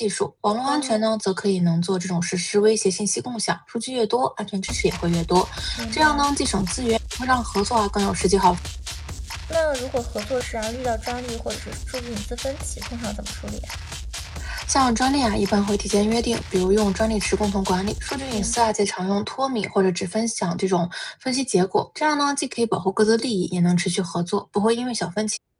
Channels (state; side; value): identical; both; correlation 1.00